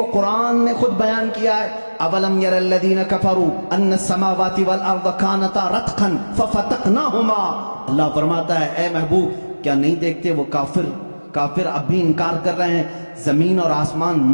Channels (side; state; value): both; inverted; correlation -1.00